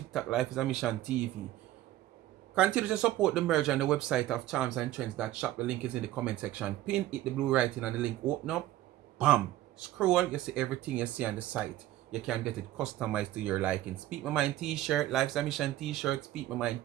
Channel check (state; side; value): quieter; left; 14.5 dB